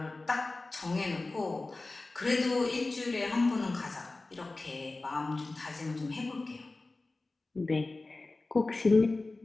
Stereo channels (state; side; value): quieter; right; 3.3 dB